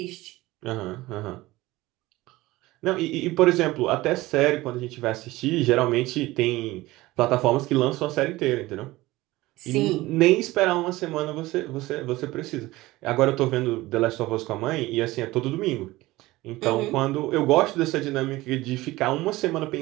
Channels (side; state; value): left; quieter; 18.8 dB